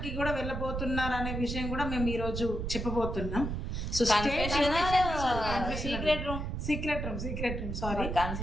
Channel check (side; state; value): right; noise; rumble, 4 dB below the sound